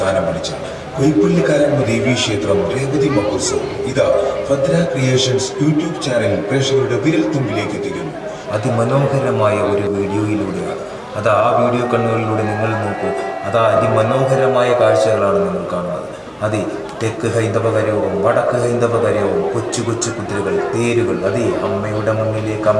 പിടിച്ച കൈപ്പള്ളിക്കാരാമ്മ ദേവീ ക്ഷേത്രം രേവതി മഹോത്സവം ഇതാ ഭദ്ര ക്രിയേഷൻസ് യൂട്യൂബ് ചാനൽ പ്രേക്ഷകരുടെ വിരൽ തുമ്പിലേക്ക് എത്തിക്കുന്നു. അതിമനോഹരമായ ഒരു വീഡിയോയിലൂടെയാണ് അതാ ആ വീഡിയോ കണ്ണുകളിലൂടെ നിങ്ങൾ നോക്കൂ. അതാ അതിമനോഹരമായ കാഴ്ചകളാണ് നിങ്ങൾ കാണുന്നത്. അതെ, തെക്ക് ഹൈന്ദവകരവും വടക്ക് ഹൈന്ദവകരവും കൊച്ചു കൊച്ചു കുതിരകൾ, തേരുകൾ, അതേ അമ്മയുടെ മുന്നിലേക്ക്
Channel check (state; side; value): identical; both; correlation 1.00